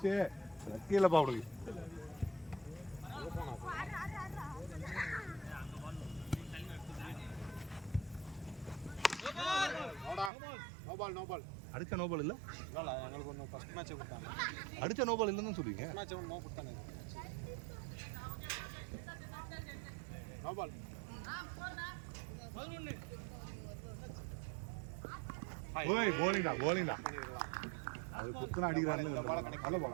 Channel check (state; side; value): drops out; left; at 10.3 s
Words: லக்கியில பாவுடுங்க நோ பால் அடிச்ச நோபால் இல்ல இல்ல எங்களுக்கு ஒன்னு ஃபர்ஸ்ட் மேட்ச் கொடுத்தாங்க அடிச்ச நோபால் இல்லன்னு சொல்றீங்க மேட்ச் ஒன்னு நோ கொடுத்தாங்க நோ பால் 11 ஓய் போலிங்கடா அது குத்துனா அடிக்கிறாருன்னு நல்ல பால்